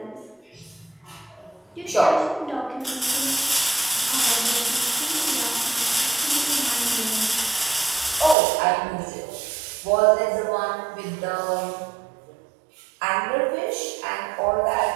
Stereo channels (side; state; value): left; drops out; at 8.3 s